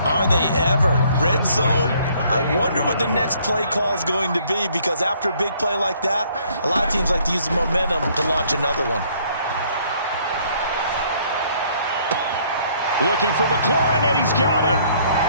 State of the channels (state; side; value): inverted; both; correlation -0.63